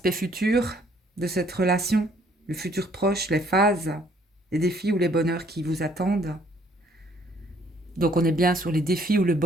futur de cette relation, le futur proche, les phases, les défis ou les bonheurs qui vous attendent. Donc on est bien sur les défis ou le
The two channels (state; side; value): normal; both; correlation 0.62